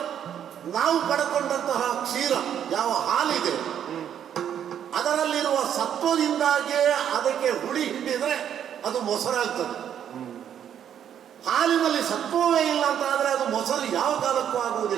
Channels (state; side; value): quieter; left; 9.4 dB